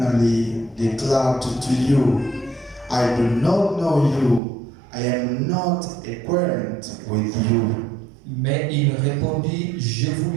declare to you, I do not know you. I am not acquainted with you. Mais il répondit, je vous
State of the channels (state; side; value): drops out; left; at 4.4 s